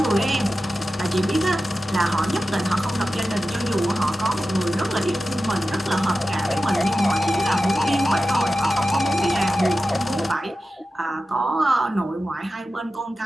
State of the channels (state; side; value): normal; both; correlation 0.93